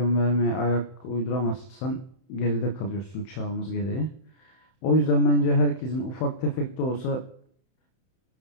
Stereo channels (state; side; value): late; right; 31 ms